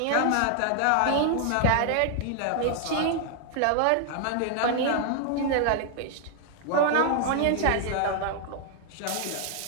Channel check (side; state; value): both; different; correlation -0.01